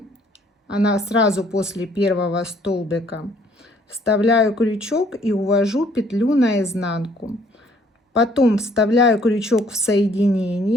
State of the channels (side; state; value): both; normal; correlation 0.62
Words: она сразу после первого столбика, вставляю крючок и увожу петлю наизнанку. Потом вставляю крючок в